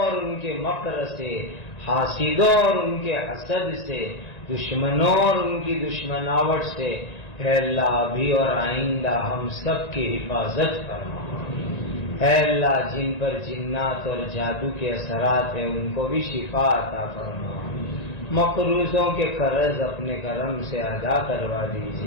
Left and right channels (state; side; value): late; right; 1.9 ms